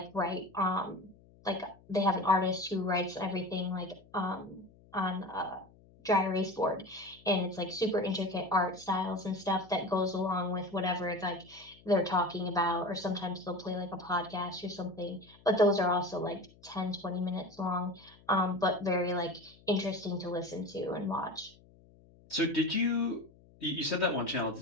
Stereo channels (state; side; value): noise; left; hum, 26 dB below the sound